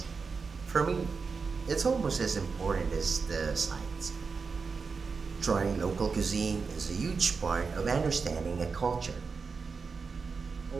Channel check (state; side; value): quieter; left; 5.0 dB